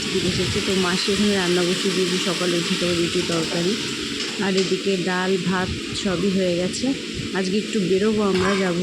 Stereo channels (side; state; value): both; identical; correlation 1.00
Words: দিকে এসেছে। তো মাসি এখানে রান্না বসিয়ে দিয়েছি, সকালে উঠে তো রুটি তরকারি, আর এদিকে ডাল ভাত সবই হয়ে গেছে। আজকে একটু বেরোবো, আমরা যাবো